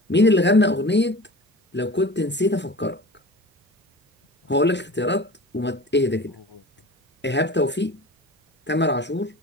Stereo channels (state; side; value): normal; both; correlation 0.38